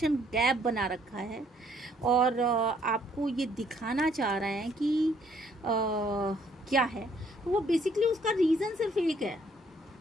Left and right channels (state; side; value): normal; both; correlation 0.65